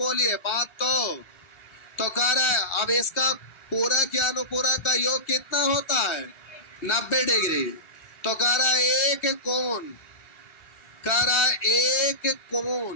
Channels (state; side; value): late; right; 1.4 ms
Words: बात तो कह रहा है। अब इसका पूरक या अनुपूरक का योग कितना होता है? 90 डिग्री। तो कह रहा है एक कोण, कह रहा है एक